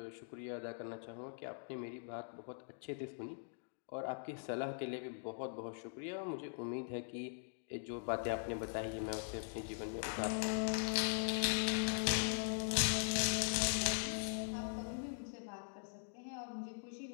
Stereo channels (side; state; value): right; silent; digital silence